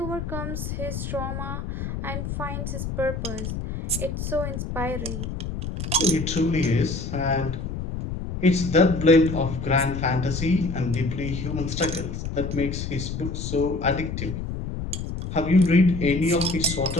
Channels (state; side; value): noise; left; rumble, 5 dB below the sound